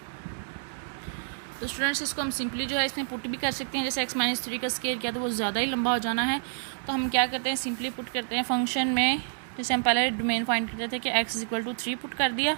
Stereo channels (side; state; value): left; silent; digital silence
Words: तो स्टूडेंट्स इसको हम सिंपली जो है इसमें पुट भी कर सकते हैं, जैसे x माइनस 3 का स्क्वायर किया तो वो ज़्यादा ही लंबा हो जाना है, तो हम क्या करते हैं सिंपली पुट करते हैं फंक्शन में। जैसे हम पहले डोमेन फाइंड करते थे कि x is equal to 3 put कर दिया,